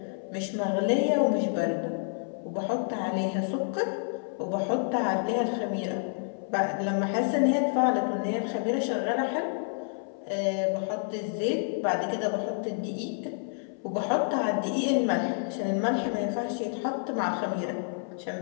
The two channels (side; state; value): right; silent; 59 dB below the other